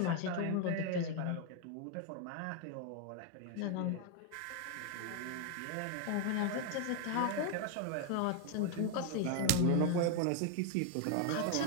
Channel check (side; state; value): both; different; correlation 0.01